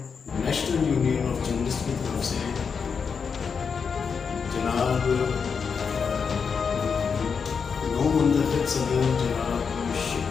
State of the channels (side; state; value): right; quieter; 6.0 dB